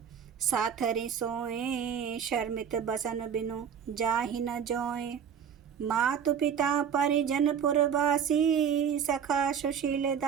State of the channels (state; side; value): quieter; left; 7.8 dB